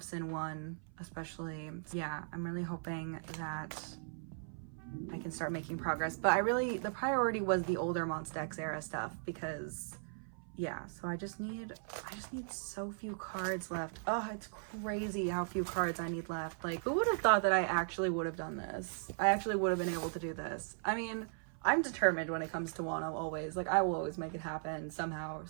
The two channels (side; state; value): left; silent; 53 dB below the other